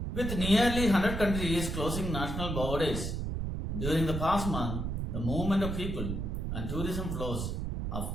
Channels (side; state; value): right; noise; rumble, 3 dB below the sound